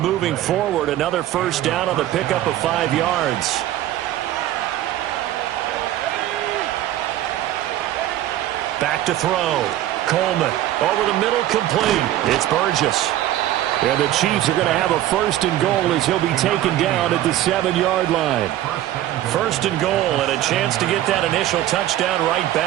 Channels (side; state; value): left; quieter; 13.5 dB